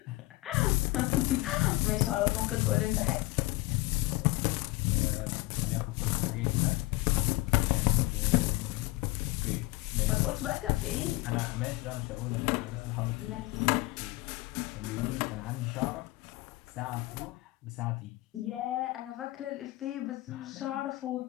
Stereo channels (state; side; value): quieter; right; 20.7 dB